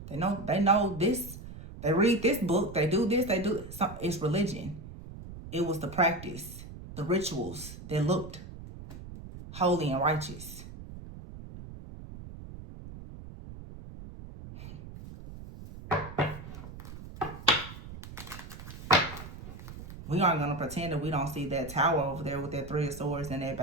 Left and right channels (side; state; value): right; noise; rumble, 13 dB below the sound